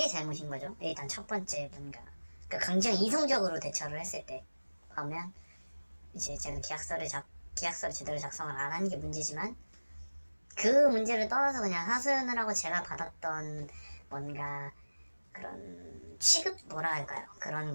잘못인 거죠. 일단 첫 번째 뭔가 그러니까 굉장히 이성적으로 대처를 했을 때 보면 이제 제가 계약서를 제대로 작성을 안 한 게 문제지만 그 문제를 떠나서 그냥 하소연을 하고 제가 받았던 뭔가 그런 취급 뭐라 할까요? 그런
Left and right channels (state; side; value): inverted; both; correlation -1.00